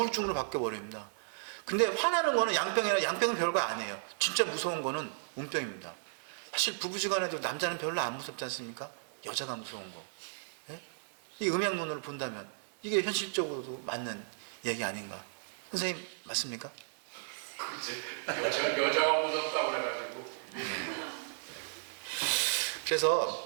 바뀌어버립니다. 근데 화나는 거는 양병은 별거 아니에요. 진짜 무서운 거는 운병입니다. 사실 부부지간에도 남자는 별로 안 무섭지 않습니까? 여자가 무서운 거. 예? 이 음양론으로 본다면 이게 현실적으로도 맞는 얘기 아닌가? 선생님 맞습니까? 그치. 여자가 무섭다고 그래가지고.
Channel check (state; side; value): silent; left; 55 dB below the other